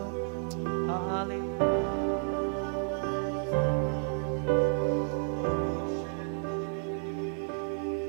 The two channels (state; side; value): silent; left; digital silence